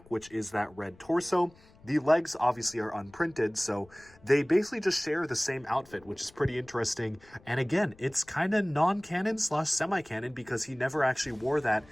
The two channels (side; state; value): left; noise; rumble, 26 dB below the sound